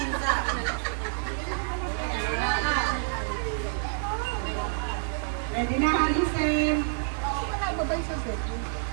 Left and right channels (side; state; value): left; silent; digital silence